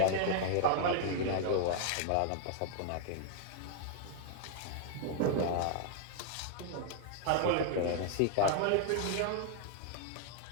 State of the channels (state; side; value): different; both; correlation 0.00